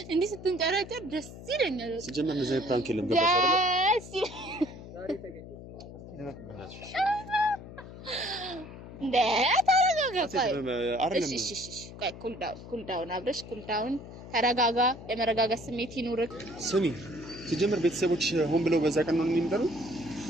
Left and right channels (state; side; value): noise; left; hum, 14 dB below the sound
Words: እንዲህ ስትንጨረጨር ደስ ይለኛል። ሲጀመር ነው ዘይ ፕራንክ የለም ገባሽ አይደል? ዛሬ ተገኘ እንደ ታረጋ አይደለም እሺ ቆይ ኩል ዳውን አብረሽ ኩል ዳውን ተረጋጋ የመረጋጋት ስሜት ይኑርክ ስሚ ሲጀምር ቤተሰቦች ሆን ብለው በዛ ቀን ነው የሚመጣው